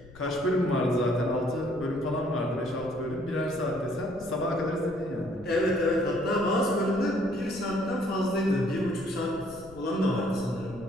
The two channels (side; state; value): left; noise; rumble, 20 dB below the sound